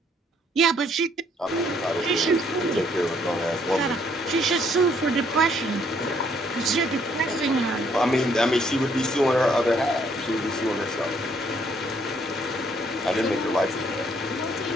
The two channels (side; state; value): both; normal; correlation 0.67